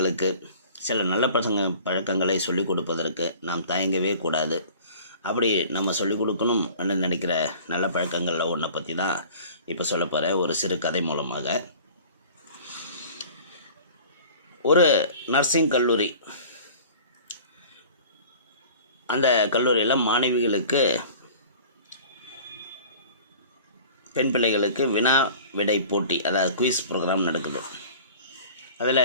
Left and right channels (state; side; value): inverted; both; correlation -0.45